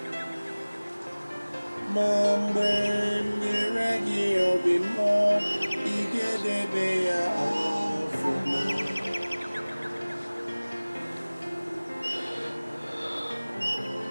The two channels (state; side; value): inverted; both; correlation -1.00